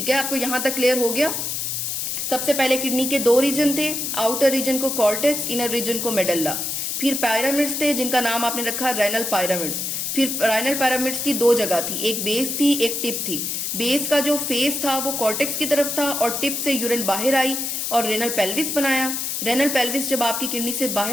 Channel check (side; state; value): left; noise; hiss, 2 dB below the sound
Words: है। आपको यहां तक क्लियर हो गया? सबसे पहले किडनी के 2 रीजन थे, आउटर रीजन को कॉर्टेक्स, इनर रीजन को मेडल्ला। फिर पिरामिड्स थे जिनका नाम आपने रखा रेनल पिरामिड्स। फिर रेनल पिरामिड्स की दो जगह थी, एक बेस थी एक टिप थी। बेस का जो फेस था वो कॉर्टेक्स की तरफ था और टिप से यूरिन बाहर आई और रेनल पेल्विस बनाया। रेनल पेल्विस जब आपकी किडनी से